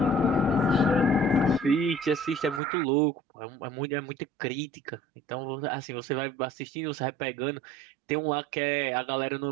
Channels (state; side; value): drops out; left; at 2.6 s